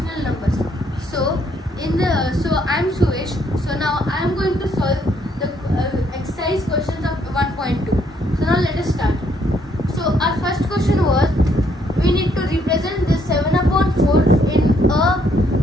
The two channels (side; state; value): both; normal; correlation 0.70